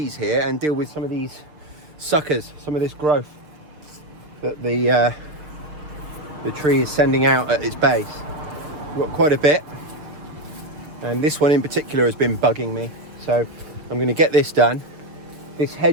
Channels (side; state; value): left; late; 6.6 ms